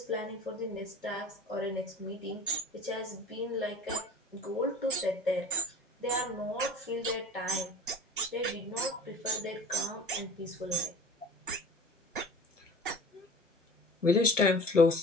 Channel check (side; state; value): both; normal; correlation 0.42